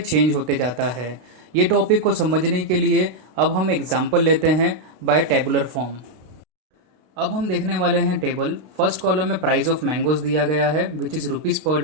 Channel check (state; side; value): late; left; 32 ms